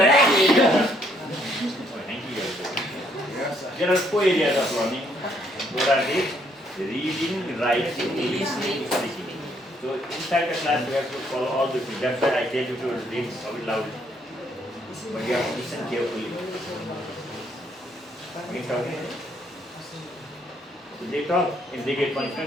are four areas. There are four areas of learning. What are these? Reading, writing, listening, speaking. So inside the class, you have to follow all the things. That's why I tell you to read loudly. But you have to listen carefully. Okay? So they talk and they get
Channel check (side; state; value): both; normal; correlation 0.69